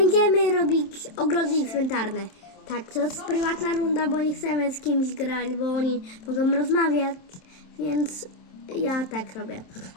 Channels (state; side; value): late; right; 27 ms